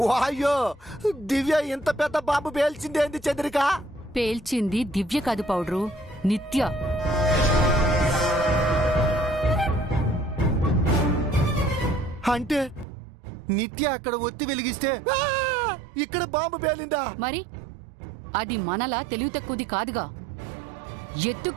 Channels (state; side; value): drops out; left; at 12.9 s